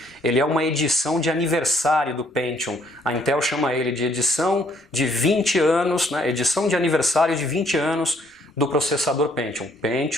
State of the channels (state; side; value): normal; both; correlation 0.67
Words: Ele é uma edição de aniversário do Pentium. A Intel chama ele de edição de 20 anos, né? Edição de aniversário de 20 anos do processador